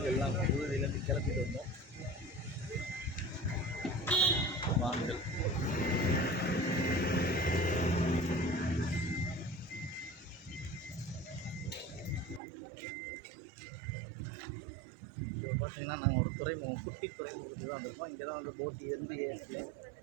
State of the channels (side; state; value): left; drops out; at 12.4 s